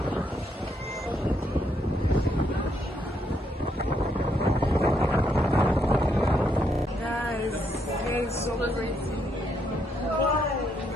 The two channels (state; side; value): normal; both; correlation 0.75